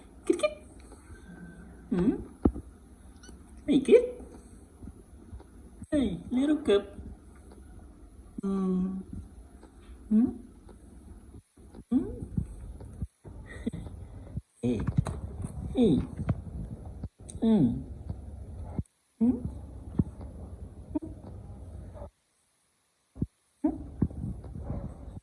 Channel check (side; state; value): both; identical; correlation 1.00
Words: Kid, kid. Hmm. Hey, kid. Hey, little cup. Hmm. Hmm. Hmm. Hey. Hey. Hmm. Hmm.